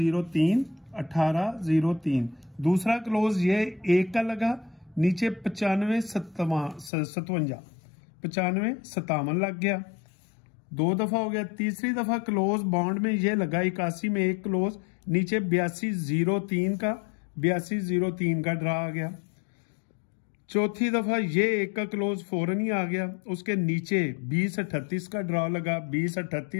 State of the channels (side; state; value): right; drops out; at 6.9 s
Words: 18-03। दूसरा क्लोज ये 1 का लगा, नीचे 95-57, 95-57 लग गया, 2 दफा हो गया। तीसरी दफा क्लोज बॉन्ड में ये लगा 81 में 1 क्लोज, नीचे 82-03 का, 82-03 का ड्रा आ गया। चौथी दफा ये 1 का क्लोज फौरन ही आ गया, उसके नीचे 20-38 का ड्रा लगा,